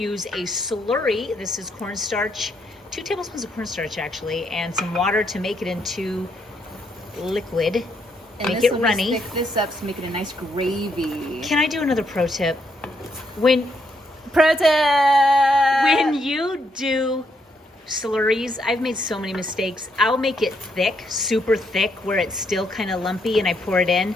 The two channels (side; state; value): both; normal; correlation 0.76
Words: a slurry. This is cornstarch, 2 tablespoons of cornstarch actually, and some water to make it into liquid. And make it runny. Thick this up to make it a nice gravy. Can I do another pro tip? When you do slurries, I've made so many mistakes. I'll make it thick, super thick, where it's still kind of lumpy and I pour it in.